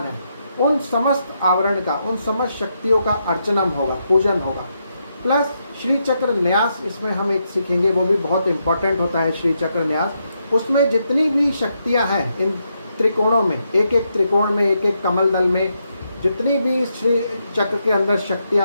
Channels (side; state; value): both; inverted; correlation -0.81